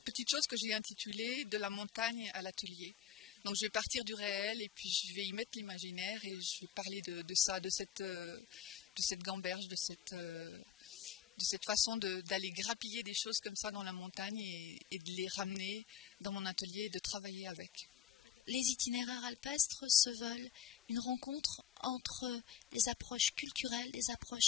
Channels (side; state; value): right; quieter; 9.6 dB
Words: petite chose que j'ai intitulée « De la montagne à l'atelier ». Donc je vais partir du réel et puis je vais y mettre l'imaginaire, et je vais parler de ça, de cette gamberge, de cette façon d'aller grappiller des choses comme ça dans la montagne et de les ramener dans mon atelier et de travailler avec. Les itinéraires alpestres se veulent une rencontre entre des approches culturelles, des